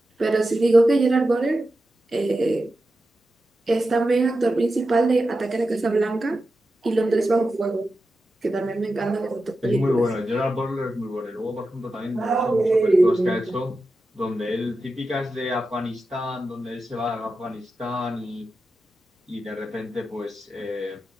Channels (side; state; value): both; normal; correlation 0.91